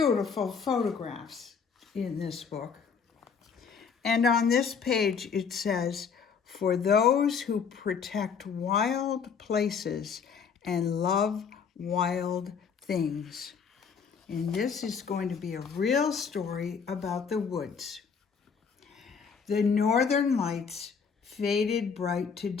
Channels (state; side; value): quieter; right; 6.2 dB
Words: photographs in this book. And on this page it says, "For those who protect wild places and love wild things." And this is going to be a real story about the woods. The northern lights faded bright to